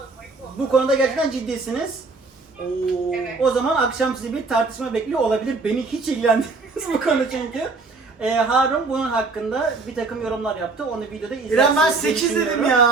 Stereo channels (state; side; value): quieter; left; 3.9 dB